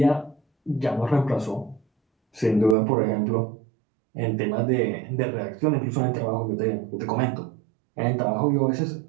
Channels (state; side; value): drops out; left; at 2.8 s